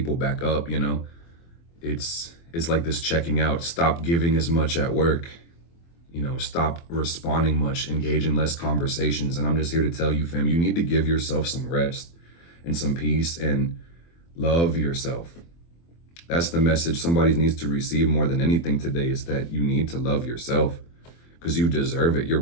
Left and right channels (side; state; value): right; late; 24 ms